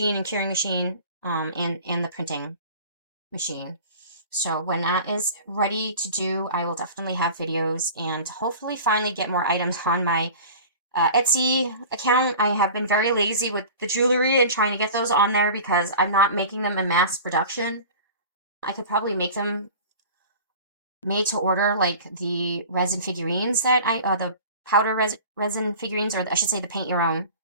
and curing machine and the printing machine. So when that is ready to do, I will definitely have videos and hopefully finally get more items on my Etsy account. I have been very lazy with the jewelry and trying to get those on there because I'm not making them in mass production. I could probably make them made to order, like the resin figurines that the powder resin figurines, or I should say the paint your own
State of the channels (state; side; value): inverted; both; correlation -0.39